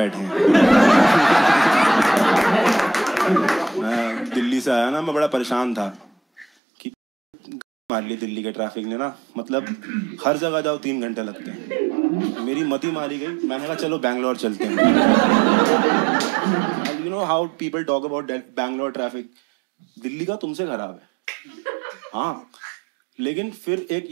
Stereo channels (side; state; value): left; drops out; at 6.5 s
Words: हैं। मैं दिल्ली से आया ना, मैं बड़ा परेशान था कि मार ली दिल्ली के ट्रैफिक ने ना, मतलब हर जगह जाओ 3 घंटे लगते हैं। मेरी मती मारी गई, मैंने कहा चलो बैंगलोर चलते हैं। You know how people talk about Bangalore traffic? Delhi का तुमसे खराब है। हाँ, लेकिन फिर एक